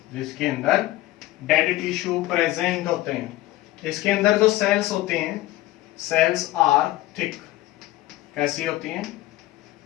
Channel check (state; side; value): quieter; right; 17.0 dB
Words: जिसके अंदर डेड टिश्यू प्रेजेंट होते हैं। इसके अंदर जो सेल्स होते हैं, सेल्स आर थिक, कैसी होती हैं?